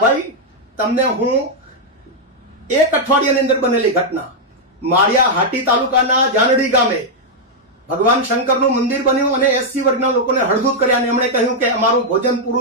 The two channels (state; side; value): normal; both; correlation -0.03